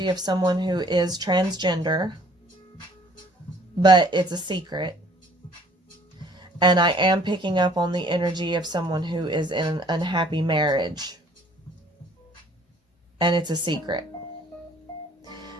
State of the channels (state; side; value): normal; both; correlation 0.56